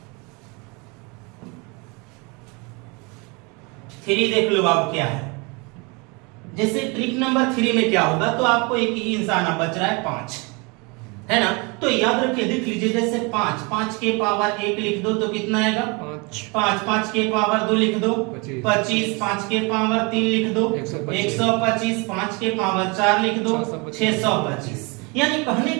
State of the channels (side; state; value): left; quieter; 29.3 dB